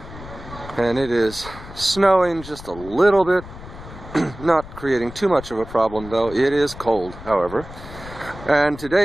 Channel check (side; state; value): left; noise; rumble, 15 dB below the sound